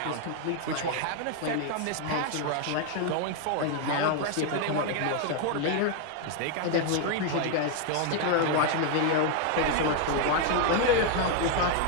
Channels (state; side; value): different; both; correlation 0.00